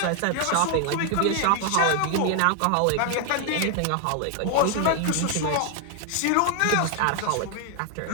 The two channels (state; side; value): different; both; correlation 0.00